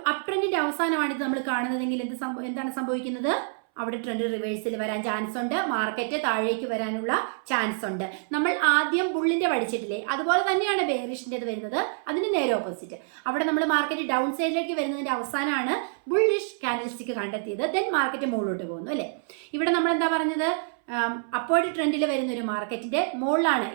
അപ് ട്രെൻഡിന്റെ അവസാനമാണ് ഇത് നമ്മൾ കാണുന്നതെങ്കിൽ എന്താണ് സംഭവിക്കുന്നത്? അവിടെ ട്രെൻഡ് റിവേഴ്സിൽ വരാൻ ചാൻസ് ഉണ്ട്, മാർക്കറ്റ് താഴേക്ക് വരാനുള്ള ചാൻസ് ഉണ്ട്. നമ്മൾ ആദ്യം ബുള്ളിന്റെ പഠിച്ചിട്ടില്ലേ, അതുപോലെ തന്നെയാണ് ബെയറിഷിൻ്റെത് വരുന്നത്. അതിന് നേരെ ഓപ്പോസിറ്റ്. അവിടെ നമ്മൾ മാർക്കറ്റ് ഡൗൺ സൈഡിലേക്ക് വരുന്നതിന്റെ അവസാനമാണ് ബുള്ളിഷ് ക്യാൻഡിൽ സ്റ്റിക്ക് കണ്ടെത്തിയത്. ദെൻ മാർക്കറ്റ് മുകളിലോട്ട് പോകുന്നു, അല്ലേ? ഇവിടെ നമ്മൾ എന്താ പറഞ്ഞത്? അപ്വേർഡ് ട്രെൻഡിൽ വരുന്ന ഒരു മാർക്കറ്റിന്റെ മുകളിലാണ്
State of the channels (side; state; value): left; silent; 60 dB below the other